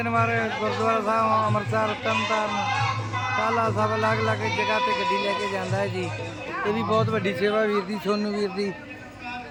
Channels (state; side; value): identical; both; correlation 1.00